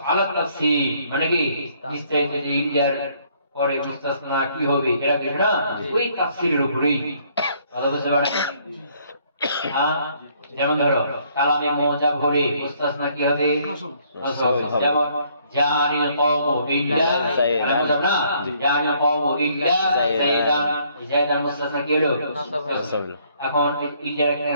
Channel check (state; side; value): inverted; both; correlation -0.65